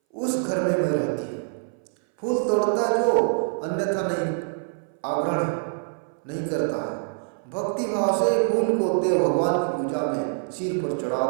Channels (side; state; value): left; silent; 60 dB below the other